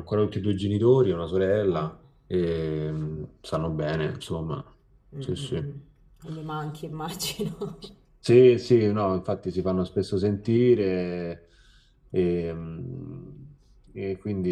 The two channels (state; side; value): identical; both; correlation 1.00